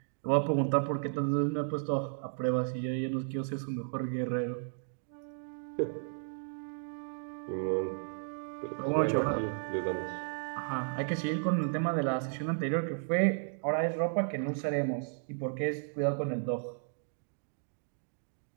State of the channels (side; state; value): left; silent; digital silence